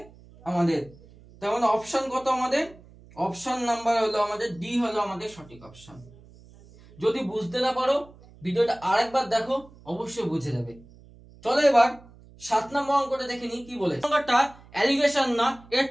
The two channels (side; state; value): right; noise; hum, 23 dB below the sound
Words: আমাদের। তার মানে অপশন কত আমাদের? অপশন নাম্বার হলো আমাদের ডি, হলো আমাদের সঠিক অপশন। যদি বুঝতে না পারো ভিডিওটা আরেকবার দেখো, অবশ্যই বুঝে যাবে। চলো এবার 7 নম্বর অঙ্কটা দেখে নিই কি বলে। অঙ্কটা অ্যালিগেশন না,